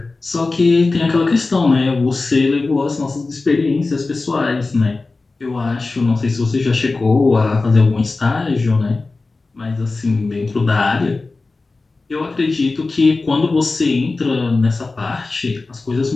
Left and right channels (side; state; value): right; quieter; 3.6 dB